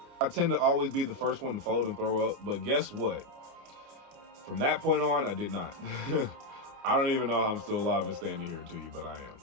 I tend to always be the first one to fold and throw up, but guess what? From that point on, I did not. I don't even know how I'm still alive and standing here to you, but I am,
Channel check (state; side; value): late; left; 29 ms